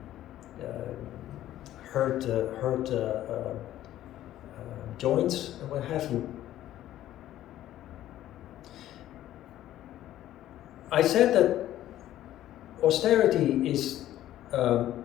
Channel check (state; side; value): quieter; right; 13.1 dB